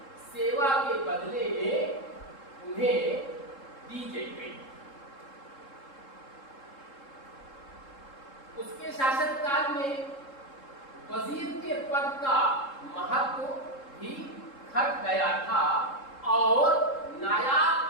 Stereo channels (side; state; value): right; late; 3.7 ms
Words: सेवा के बदले में उन्हें दी गई। उसके शासनकाल में वजीर के पद का महत्व भी घट गया था और